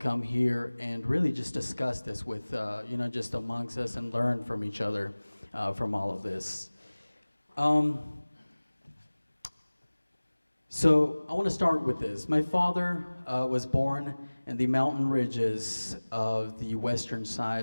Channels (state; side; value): inverted; both; correlation -1.00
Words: here and really just discuss this with, just amongst us and learn from each other from all of this. So I want to start with this. My father was born in the mountain ridges of the western